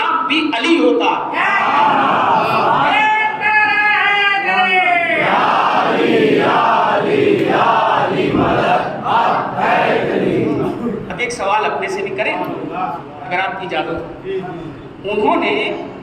بھی علی ہوتا. اب ایک سوال اپنے سے بھی کریں اگر آپ کی اجازت. انہوں نے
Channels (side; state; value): both; identical; correlation 1.00